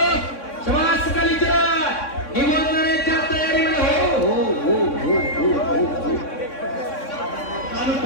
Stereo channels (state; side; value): late; right; 3.6 ms